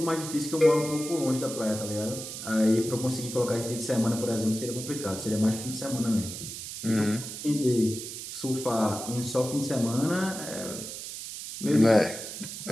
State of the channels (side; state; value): right; noise; hiss, 9 dB below the sound